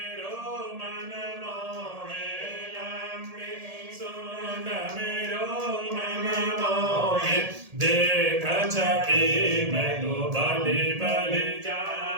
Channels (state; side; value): late; left; 1.8 ms